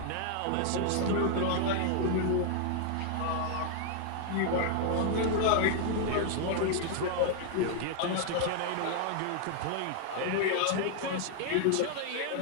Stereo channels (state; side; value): different; both; correlation 0.00